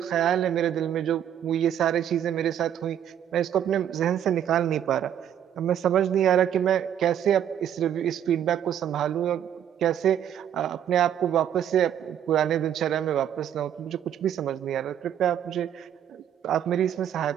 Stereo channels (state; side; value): quieter; left; 9.8 dB